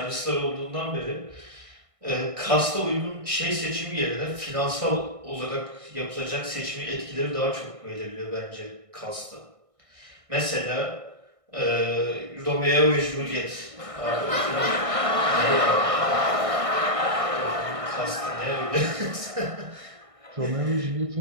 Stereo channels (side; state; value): left; late; 1.6 ms